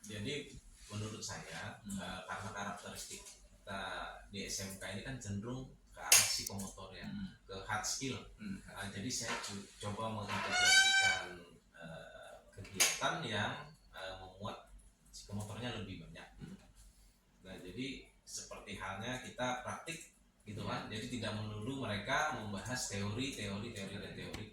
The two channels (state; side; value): identical; both; correlation 1.00